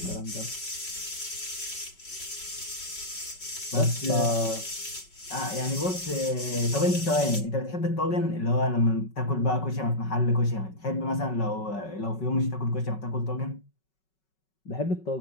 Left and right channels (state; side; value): late; right; 5.3 ms